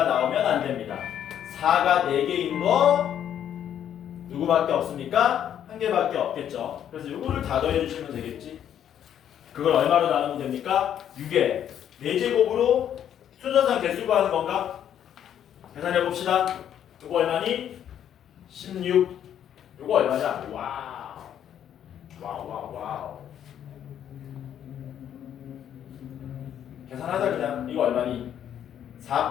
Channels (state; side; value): quieter; right; 9.8 dB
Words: 나오면 안 됩니다. 4가 4개인 거 누구밖에 없습니까? 한 개밖에 없겠죠. 그래서 이거를 다 더해주시면 되겠지. 그걸 얼마로 나누면 됩니까? 6에 4제곱으로 순서상 개수 구하는 건가? 계산해 봅시다. 이거 얼마니? 16. 이거 얼마냐? 와우. 와우. 계산하자 그냥. 이거 얼마니?